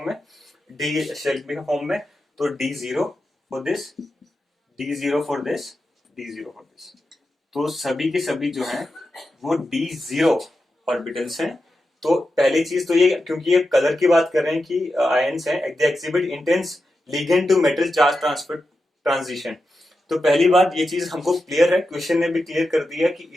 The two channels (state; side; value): normal; both; correlation 0.89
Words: में, डी शेल के फॉर्म में, तो D0 for this, D0 for this, D0 for this, तो सभी के सभी जो हैं वो D0 ऑर्बिटल्स हैं। तो पहली चीज तो ये, क्योंकि ये कलर की बात कर रहे हैं कि आयंस हैं, they exhibit intense ligand to metal charge transfer transition. तो पहली बात ये चीज हमको क्लियर है, क्वेश्चन ने भी क्लियर कर दिया कि